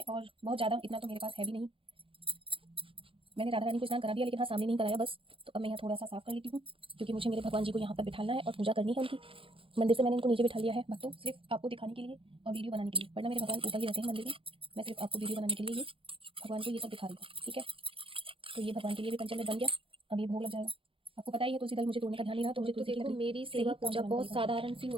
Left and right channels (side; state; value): left; late; 0.26 ms